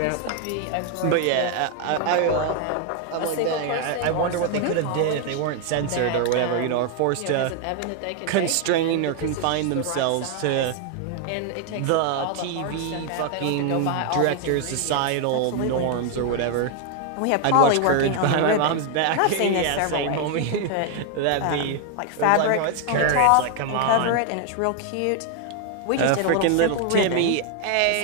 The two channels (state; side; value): different; both; correlation 0.00